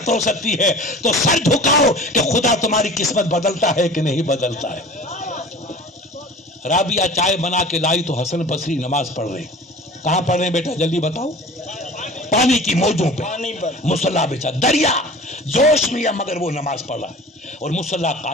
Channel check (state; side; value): normal; both; correlation 0.41